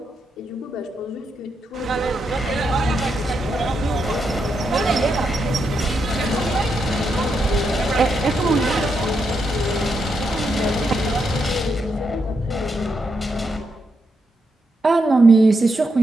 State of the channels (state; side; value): normal; both; correlation 0.82